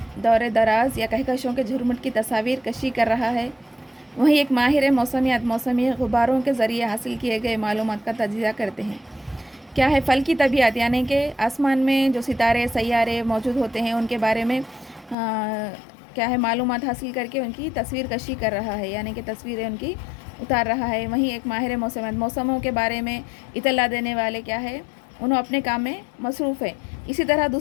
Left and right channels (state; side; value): drops out; right; at 15.2 s